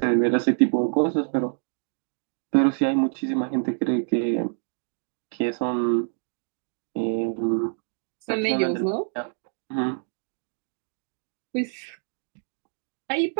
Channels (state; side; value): silent; left; digital silence